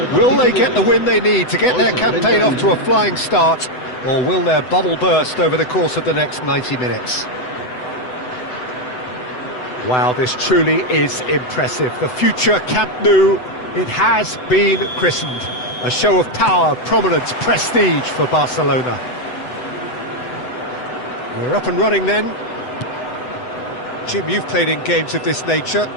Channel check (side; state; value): right; late; 7.9 ms